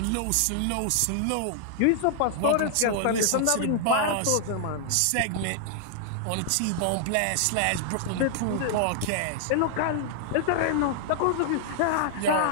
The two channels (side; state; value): both; different; correlation -0.01